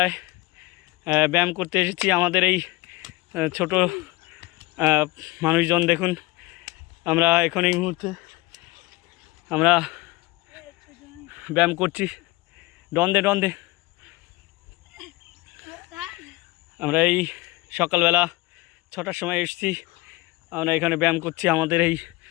ব্যায়াম করতে এসেছি। আমাদের এই ছোট মানুষজন দেখুন, আমরা এখন এই মুহূর্তে আমরা ব্যায়াম করছি। ডন্দে আমরা এই সকালবেলা 6টার সময় এসেছি। আমরা এখানে ব্যায়াম করছি আমাদের এই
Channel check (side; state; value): right; quieter; 21.8 dB